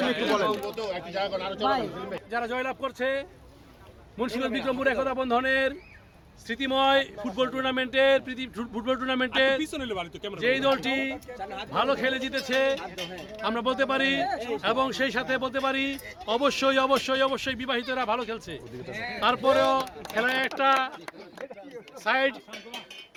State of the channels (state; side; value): identical; both; correlation 1.00